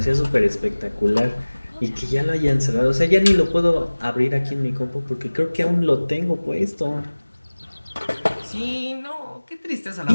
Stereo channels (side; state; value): both; inverted; correlation -1.00